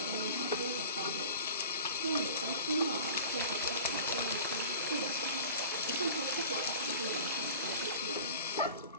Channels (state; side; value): inverted; both; correlation -0.41